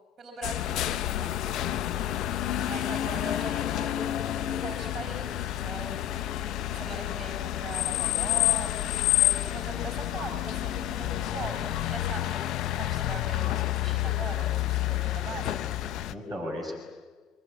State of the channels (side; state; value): right; quieter; 10.6 dB